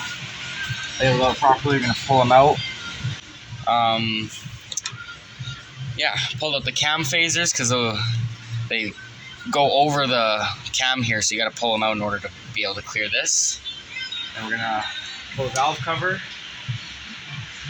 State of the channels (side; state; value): both; identical; correlation 1.00